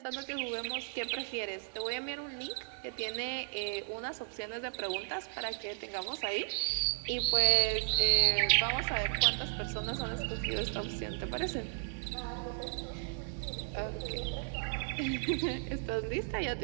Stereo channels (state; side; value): silent; left; digital silence